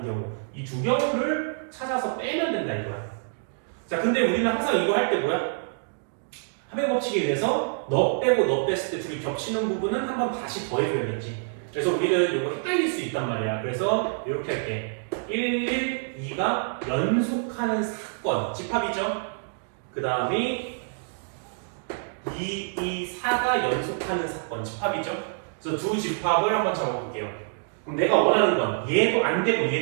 경우 이 두 경우를 찾아서 빼면 된다 이거야. 자, 근데 우리는 항상 이거 할 때 뭐야? 합의 법칙에 의해서 너 빼고 너 뺐을 때 둘이 겹치는 부분은 한 번 다시 더해줘야겠지. 그래서 우리는 이거 헷갈릴 수 있단 말이야. 그래서 이렇게 할게. 2가 연속하는 사건, 집합이죠. 그 다음에 4가 연속하는 사건, 집합이죠. 그래서 두 집합을 한번 잡아볼게요. 그럼 내가 원하는 건 얘도 안 되고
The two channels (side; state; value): left; silent; digital silence